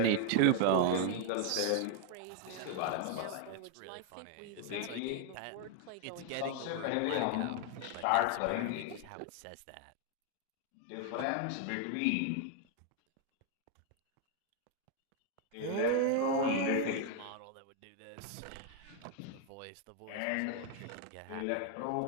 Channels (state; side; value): different; both; correlation 0.00